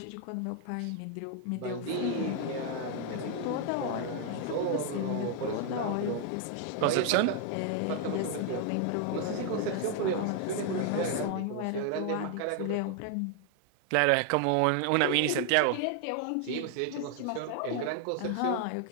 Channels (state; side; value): different; both; correlation 0.00